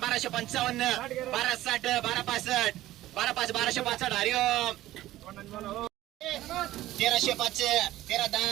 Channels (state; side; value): quieter; left; 15.2 dB